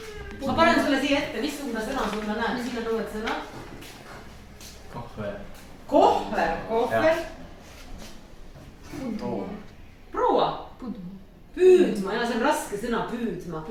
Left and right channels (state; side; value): identical; both; correlation 1.00